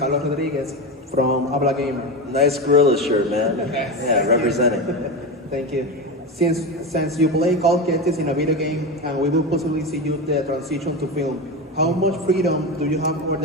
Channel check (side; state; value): both; normal; correlation 0.19